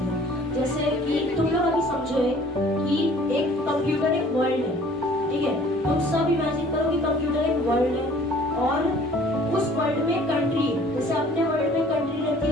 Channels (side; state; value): left; noise; rumble, 26 dB below the sound